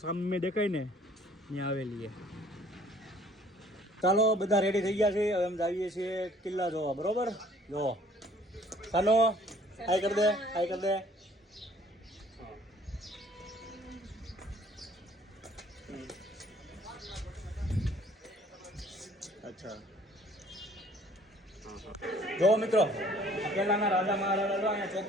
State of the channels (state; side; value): normal; both; correlation 0.56